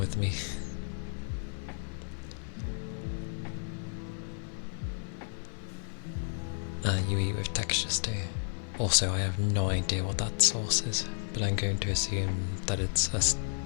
me. You eat with textures too. Also, I have no idea what that sauce is, but I'm going to assume that it's a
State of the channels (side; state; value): right; silent; 56 dB below the other